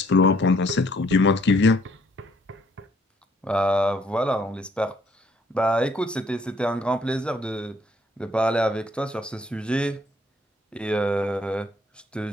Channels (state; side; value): normal; both; correlation 0.65